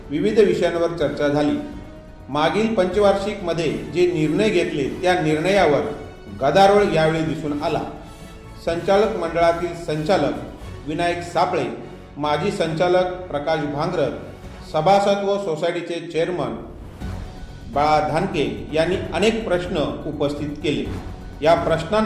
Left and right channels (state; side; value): identical; both; correlation 1.00